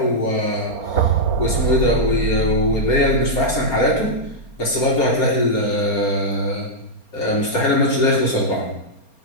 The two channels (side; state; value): right; late; 4.3 ms